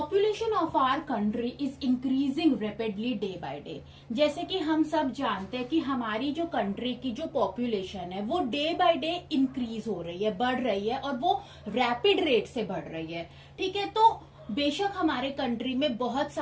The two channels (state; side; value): identical; both; correlation 1.00